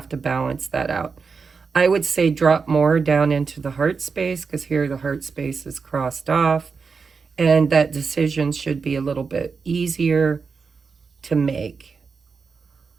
to balance that out. I would say drop more down into the heart space, because here the heart space is crossed off. and that decision should be a little bit easier to make.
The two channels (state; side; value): quieter; left; 5.2 dB